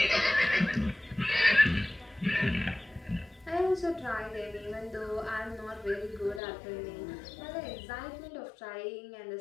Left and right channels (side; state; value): right; drops out; at 6.4 s